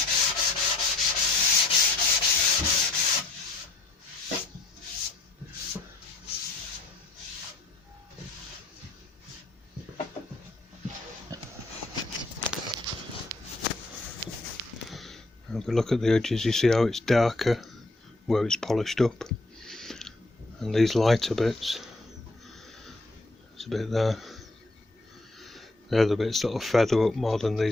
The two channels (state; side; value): quieter; right; 3.1 dB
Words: If we look at the edges, you see how it's darker where it's polished up, and these lighter bits, there's a bit there, they're the bits that will feather up more than